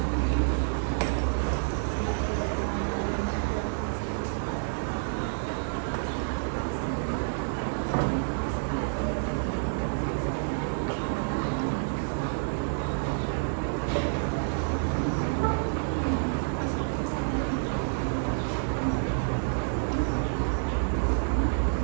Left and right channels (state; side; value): silent; left; digital silence